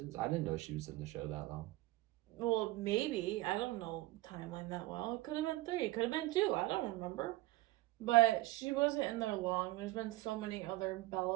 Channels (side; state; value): left; quieter; 18.5 dB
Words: I didn't know she was in the show that long. Well, maybe. I don't know timeline that well. It could have been 3. It could have been 2. I don't remember. But she wasn't in there long. There's been so many other